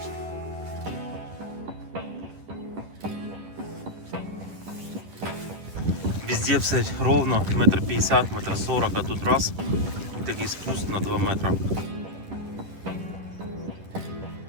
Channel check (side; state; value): left; late; 10 ms